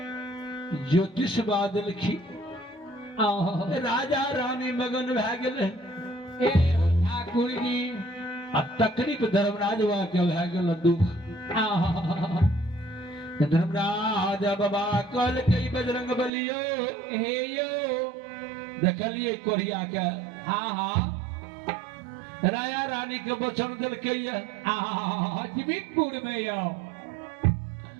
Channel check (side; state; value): left; drops out; at 16.3 s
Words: ज्योतिष बादल की राजा रानी मगन भए गेले ए ठाकुर जी आ तकरीफ धर्मराज वहाँ के भए गेल दुख धर्मराज बाबा कल कई बजरंग बलियो हे यो देखलिए कोरिया के हाँ राजा रानी के वचन दिलके जीवितपुर में यो